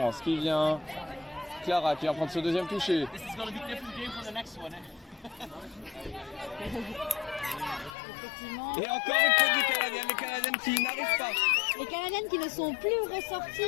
qui vient. Clara qui va prendre ce deuxième toucher. Effectivement. Et encore une faute des Canadiennes, les Canadiennes qui n'arrivent pas. Les Canadiennes qui ne sont plus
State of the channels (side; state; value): right; drops out; at 8.0 s